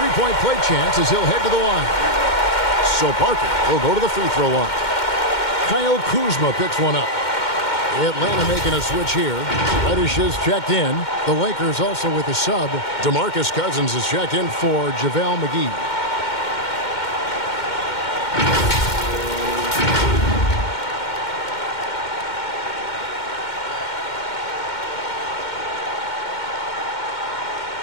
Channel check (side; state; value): right; late; 2.1 ms